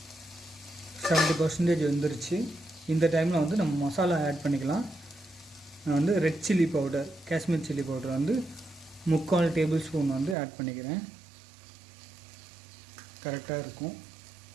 70% வந்துருச்சு. இந்த டைமில் நம்ம மசாலா ஆட் பண்ணிக்கலாம். நான் red chilli powder, Kashmir chilli powder 3/4 tablespoon add பண்ணிக்கிறேன். கரெக்டாக இருக்கும்.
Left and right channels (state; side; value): drops out; left; at 10.4 s